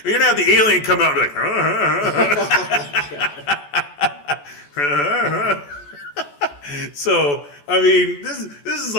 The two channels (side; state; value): right; late; 14 ms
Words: You're going to have the alien come out and be like, So, I mean, this is